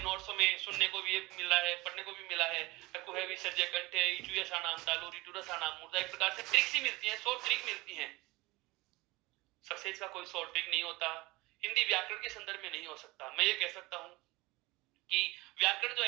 में सुनने को भी मिल रहा है, पढ़ने को भी मिला है, कुहे विसर्जय कंठे इचुयसानाम तालु रिटुरसानाम मूर्धा। एक प्रकार से ट्रिक्स ही मिलती हैं, 100 ट्रिक मिलती हैं। सक्सेस का कोई 100 ट्रिक नहीं होता, हिंदी व्याकरण के संदर्भ में नहीं हो सकता। मैं ये कह सकता हूं कि व्याकरण जो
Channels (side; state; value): left; quieter; 21.6 dB